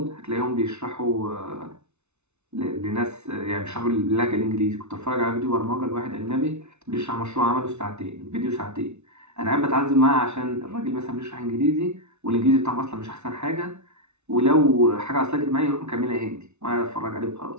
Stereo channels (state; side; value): late; left; 0.82 ms